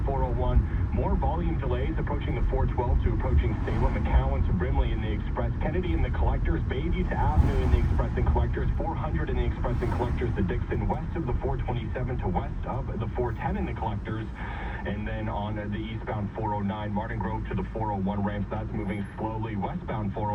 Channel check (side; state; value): both; identical; correlation 1.00